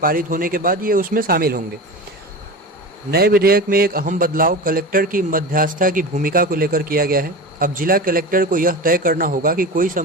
होने के बाद ये उसमें शामिल होंगे। नए विधेयक में एक अहम बदलाव कलेक्टर की मध्यस्थता की भूमिका को लेकर किया गया है। अब जिला कलेक्टर को यह तय करना होगा कि कोई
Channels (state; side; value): normal; both; correlation 0.28